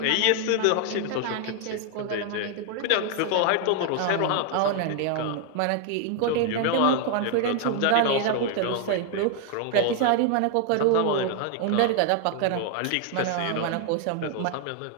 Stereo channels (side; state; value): both; different; correlation 0.00